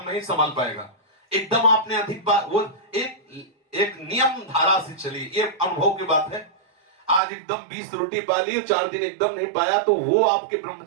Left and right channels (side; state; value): left; drops out; at 7.2 s